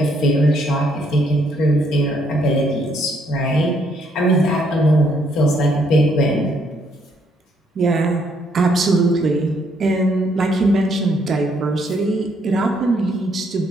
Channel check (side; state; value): both; normal; correlation 0.71